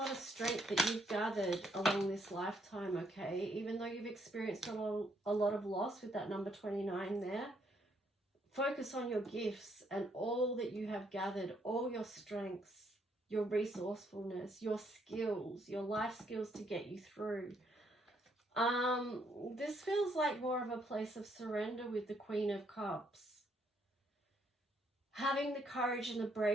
of strength that you've gathered along this lifetime, okay? Even though you've experienced a lot of loss with that number 29 there, focus on your gifts and all that you have gathered, all your strengths, your resourcefulness, your skills, your life skills to get you through. This feels like more of a place of surrender with the Queen of Cups. Having the courage and the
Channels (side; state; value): both; normal; correlation 0.71